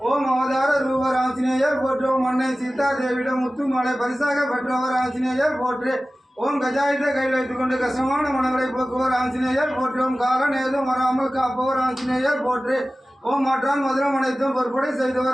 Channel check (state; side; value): normal; both; correlation 0.96